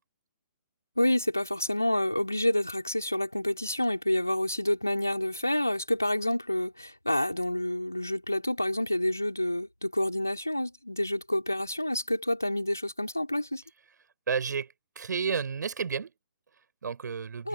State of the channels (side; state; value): both; inverted; correlation -0.92